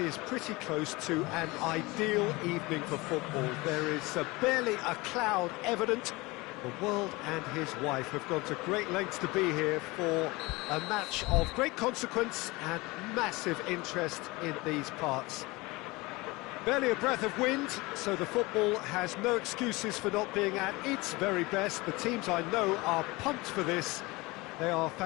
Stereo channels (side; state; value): right; quieter; 23.0 dB